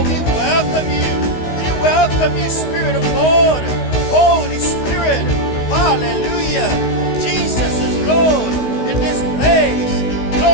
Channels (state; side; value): late; right; 16 ms